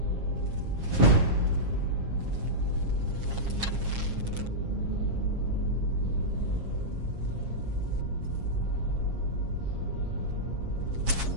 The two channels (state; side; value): late; left; 7.4 ms